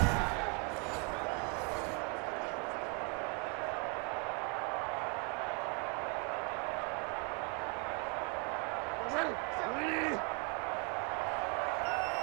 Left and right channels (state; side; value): quieter; left; 34.1 dB